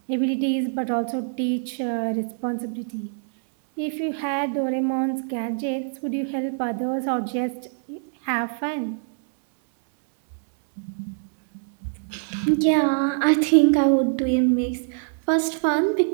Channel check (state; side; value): silent; left; 62 dB below the other